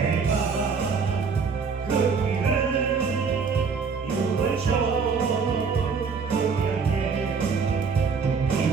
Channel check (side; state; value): left; quieter; 5.4 dB